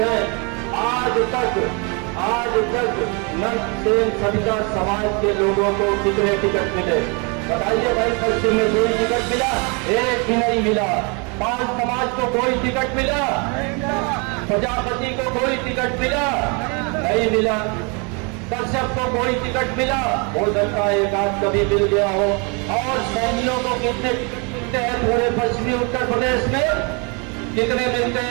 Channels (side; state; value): left; quieter; 32.8 dB